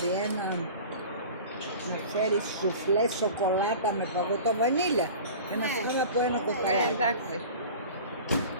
ένα... Να φέρει σουφλέ σοκολάτα με παγωτό βανίλια. Και να φάμε από ένα κοστολάκι. Εντάξει.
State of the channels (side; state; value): both; inverted; correlation -0.39